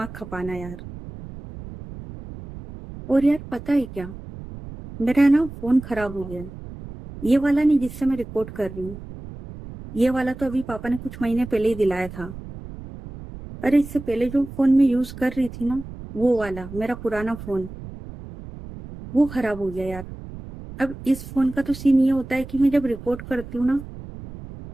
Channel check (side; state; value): right; noise; rumble, 13 dB below the sound